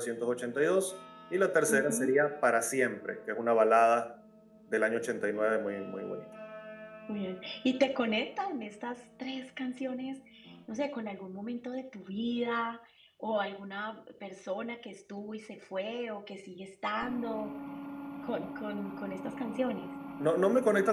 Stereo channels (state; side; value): identical; both; correlation 1.00